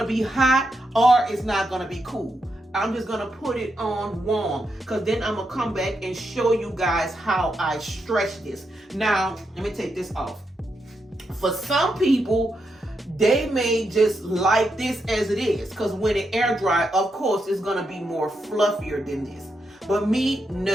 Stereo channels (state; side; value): normal; both; correlation 0.83